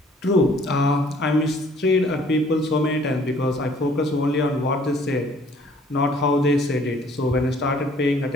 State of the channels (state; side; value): normal; both; correlation 0.58